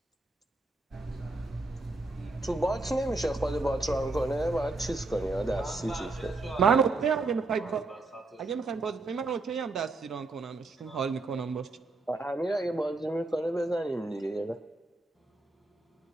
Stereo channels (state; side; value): quieter; left; 3.3 dB